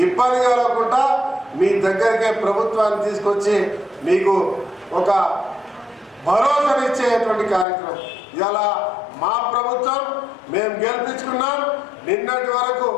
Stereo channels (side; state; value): right; drops out; at 7.7 s